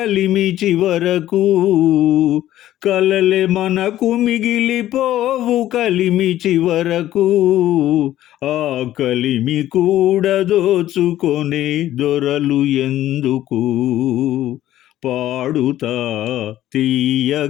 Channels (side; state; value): right; quieter; 13.4 dB